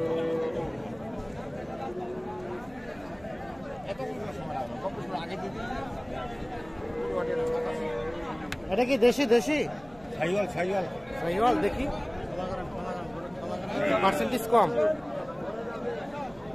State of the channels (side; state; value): right; noise; hum, 24 dB below the sound